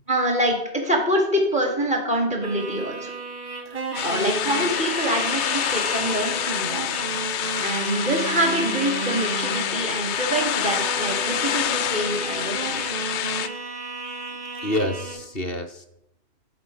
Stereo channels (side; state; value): right; late; 3.2 ms